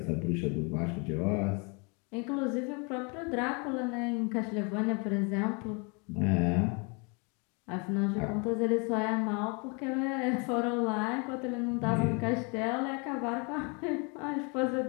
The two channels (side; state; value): right; quieter; 32.9 dB